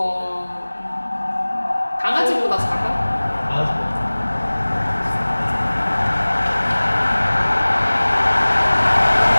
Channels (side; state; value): both; inverted; correlation -1.00